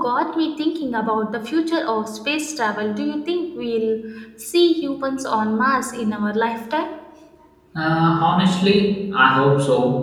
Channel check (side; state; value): both; identical; correlation 1.00